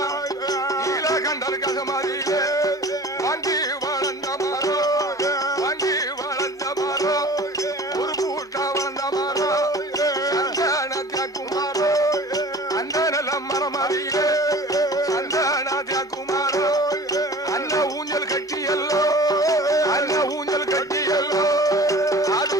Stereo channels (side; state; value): both; normal; correlation 0.42